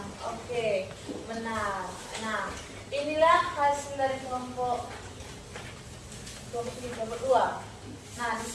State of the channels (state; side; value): identical; both; correlation 1.00